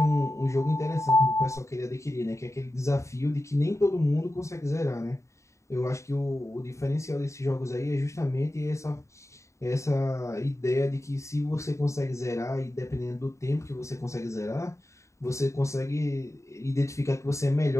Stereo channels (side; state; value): right; late; 0.14 ms